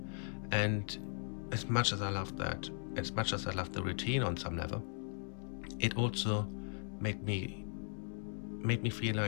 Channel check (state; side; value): silent; right; 52 dB below the other